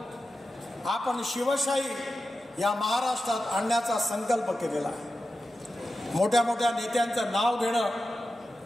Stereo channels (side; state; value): both; normal; correlation 0.92